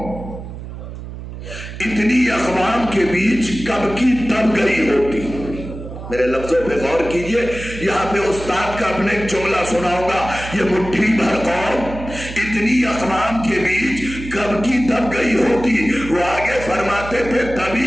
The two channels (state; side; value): noise; right; hum, 11 dB below the sound